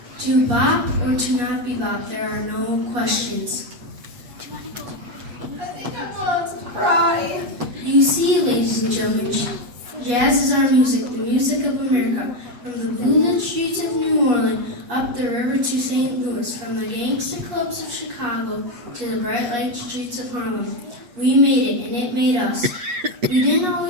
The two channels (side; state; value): left; late; 8.3 ms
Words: To bop or to not be bop, there are no questions. I think I'm going to cry. You see, ladies and gentlemen, jazz is our music, the music of America. From the blue-lit streets of New Orleans, up the river to St. Louis, from the gangster clubs of Chicago to the bright light streets of Harlem. We made it, and it made us. We didn't